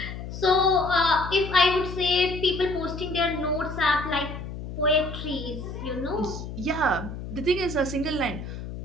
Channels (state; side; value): noise; left; hum, 9 dB below the sound